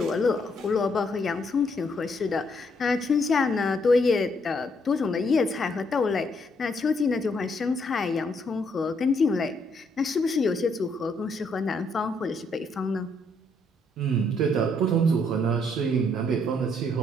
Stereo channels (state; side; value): normal; both; correlation 0.72